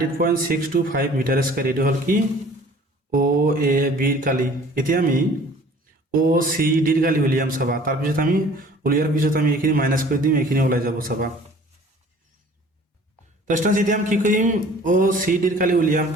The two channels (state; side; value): normal; both; correlation 0.50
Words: মিটার স্কয়ার এটো হল কি ও এ বি ৰ কালি এতিয়া আমি ও সি ডি ৰ কালি উলিয়াম চাবা তাৰ পিছত আমি উলিয়াৰ পিছত আমি এখিনি মাইনাস কৰি দিম এখিনি ওলাই যাব চাবা তো স্টুডেন্টস এতিয়া আমি কি কৰিম ও সি ডি ৰ কালি উলিয়াম